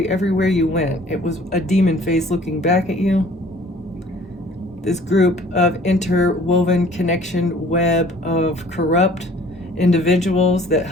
everywhere you went. It was a demon face looking back at you. This group of interwoven connection web of corrupt individuals that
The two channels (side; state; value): both; normal; correlation 0.52